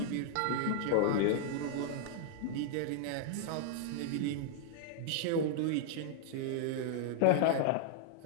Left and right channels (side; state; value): both; different; correlation -0.01